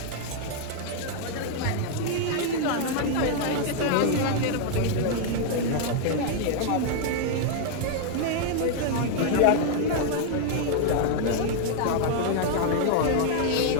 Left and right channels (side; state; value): both; different; correlation 0.00